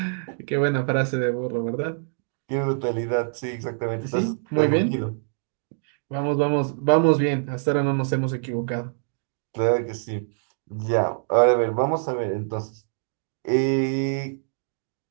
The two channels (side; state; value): left; silent; digital silence